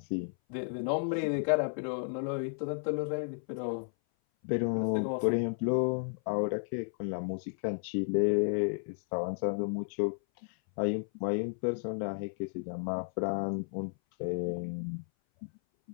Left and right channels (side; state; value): right; silent; 56 dB below the other